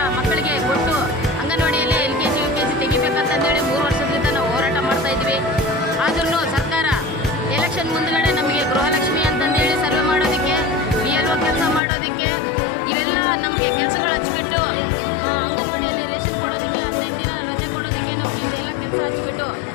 ಮಕ್ಕಳಿಗೆ ಕೊಟ್ಟು ಅಂಗನವಾಡಿಯಲ್ಲಿ LKG UKG ತೆಗಿಬೇಕಂತಂದೇಳಿ 3 ವರ್ಷದಿಂದ ನಾವು ಹೋರಾಟ ಮಾಡ್ತಾ ಇದ್ವಿ. ಆದ್ರೂ ಸರ್ಕಾರ ಎಲೆಕ್ಷನ್ ಮುಂದ್ಗಡೆ ನಮಗೆ ಗೃಹಲಕ್ಷ್ಮಿ ಅಂತಂದೇಳಿ ಸರ್ವೆ ಮಾಡೋದಕ್ಕೆ, BLO ಕೆಲಸ ಮಾಡೋದಕ್ಕೆ, ಇವೆಲ್ಲ ನಮಗೆ ಕೆಲಸಗಳು ಹಚ್ಚಿಬಿಟ್ಟು ಅಂಗನವಾಡಿಯಲ್ಲಿ ರೇಷನ್ ಕೊಡೋದಕ್ಕೆ, 15 ದಿನ ರಜೆ ಕೊಡೋದಕ್ಕೆ ನಮಗೆ ಇದೆಲ್ಲ ಕೆಲಸ ಹಚ್ಚಿಬಿಟ್ಟು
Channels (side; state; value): right; drops out; at 11.8 s